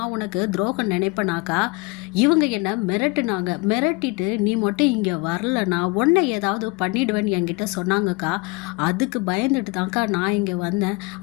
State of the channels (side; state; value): right; quieter; 26.5 dB